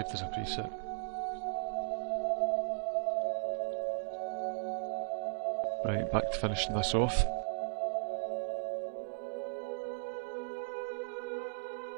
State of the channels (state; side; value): silent; left; digital silence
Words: as a preset. Right, back to finishing this off.